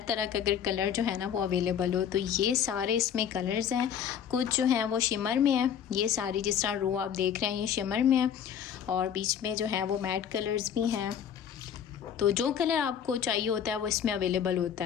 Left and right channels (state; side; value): quieter; right; 8.6 dB